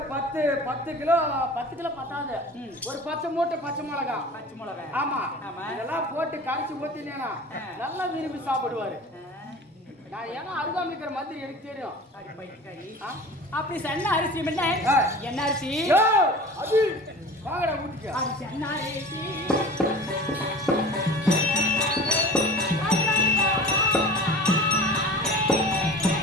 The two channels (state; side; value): normal; both; correlation 0.38